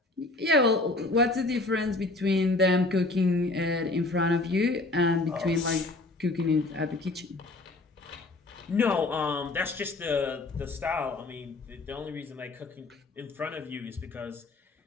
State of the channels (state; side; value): quieter; right; 3.1 dB